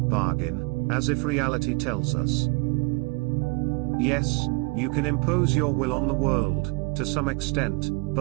as if reality tells us. Yes, you can impose your will on the world, to some extent,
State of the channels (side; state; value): left; quieter; 29.1 dB